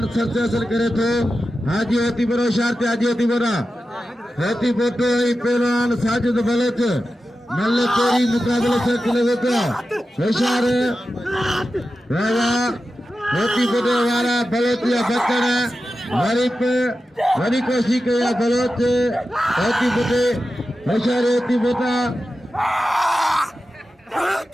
सरती हासिल करे तो हाजी होती बरो शारती हाजी होती बोरा होती पोटो पहलवान साजिद बलोच मल्ल पेरी मुकाबले से लगे तो होशियार रावा होती पोटो वाला बलोचिया बच्चन हमारी पे हरी कोशिश किया बलोच होती पोटे होशियार होती पोटा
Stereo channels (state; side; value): normal; both; correlation 0.92